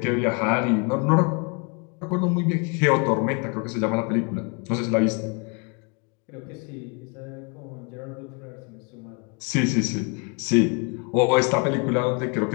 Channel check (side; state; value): right; quieter; 33.6 dB